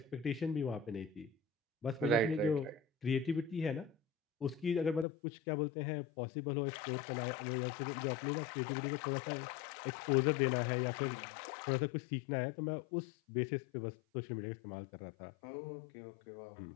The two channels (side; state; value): right; drops out; at 5.1 s